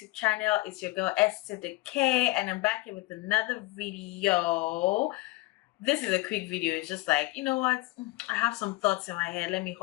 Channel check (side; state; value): right; quieter; 21.1 dB